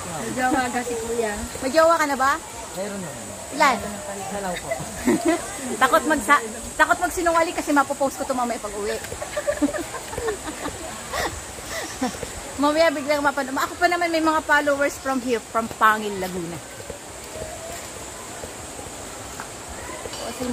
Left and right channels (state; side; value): identical; both; correlation 1.00